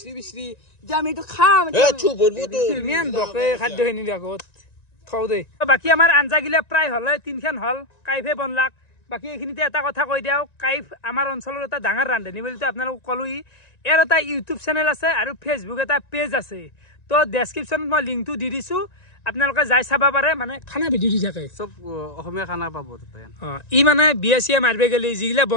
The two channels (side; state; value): right; late; 1.9 ms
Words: বিচৰি যে আমি এইটো খাম ইমান বকে খাদ্যখিনি আগত থওঁ দেই বাকী আমাৰ আঞ্জাগিলা প্ৰায় হ'লে 3খান হ'ল কাইফে বনলাক বাকী এইখিনিতে এটা কথা কৈ দিওঁ কাইফ আমাৰ অঞ্চলৰ এটা ডাঙৰ ৰান্ধনি বুলিতো আপোনালোকক ক'লোই ইয়াৰ এটা ইউটিউব চেনেল আছে আৰু ফেচবুক এটা পেজ আছে তো ডেছক্ৰিপশ্যনত মই লিংকটো দি দিছোঁ আপোনালোকে যাই চাব পাৰে মানে খানা ভিডিঅ' দি থাকে চব অসমীয়া খানা পাব তাতে ই মানে বিয়া চিয়া মাৰিব গ'লে যিগিলা